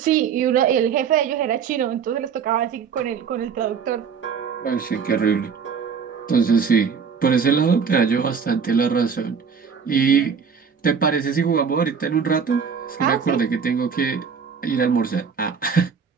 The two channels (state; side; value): quieter; left; 6.3 dB